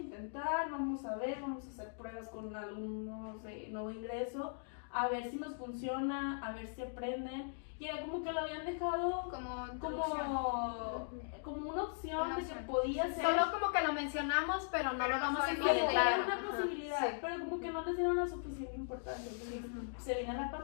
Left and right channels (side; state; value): right; silent; digital silence